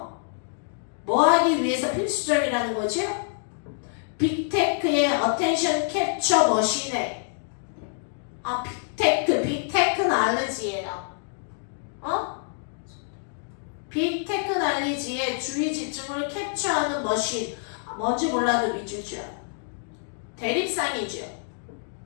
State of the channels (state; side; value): silent; right; digital silence